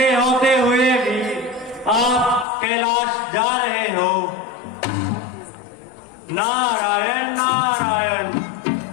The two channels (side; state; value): right; drops out; at 2.5 s